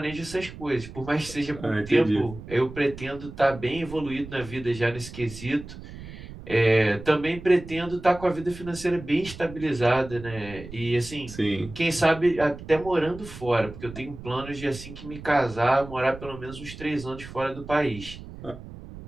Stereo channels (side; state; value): right; noise; rumble, 14 dB below the sound